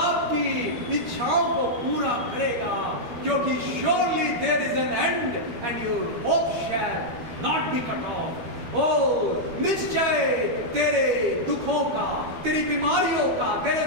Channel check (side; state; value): left; late; 12 ms